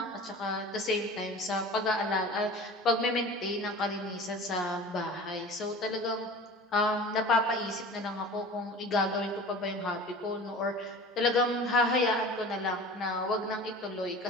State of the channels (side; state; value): both; normal; correlation 0.38